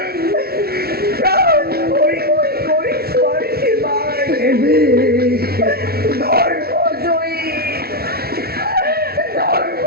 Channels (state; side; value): late; left; 0.45 ms